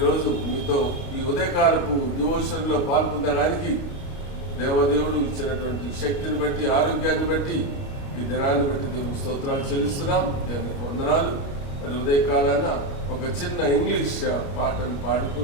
మీతో ఈ ఉదయకాలపు డివోషన్లో పాల్పొందడానికి దేవదేవుడు ఇచ్చినటువంటి శక్తిని బట్టి, ఆరోగ్యాన్ని బట్టి, ఈ దినాన్ని బట్టి దేవునికి స్తోత్రాలు చెల్లిస్తున్నాం. దేవునికి వందనాలు. మరి ఉదయకాలాన ఒక చిన్న ఇంగ్లీష్ పాటను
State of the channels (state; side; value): late; right; 29 ms